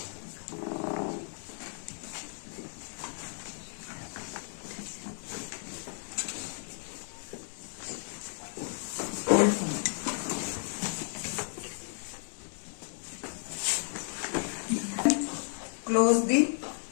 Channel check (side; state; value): right; silent; 55 dB below the other